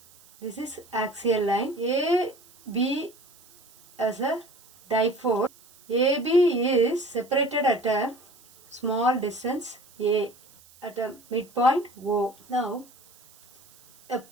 This is axial line. A, B as a dipole. AB is separated at a small distance A at a midpoint O. Now, a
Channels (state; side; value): noise; right; hiss, 26 dB below the sound